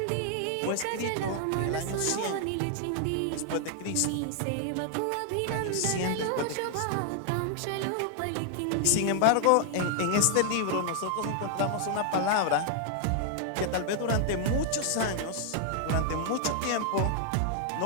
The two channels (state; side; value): different; both; correlation 0.00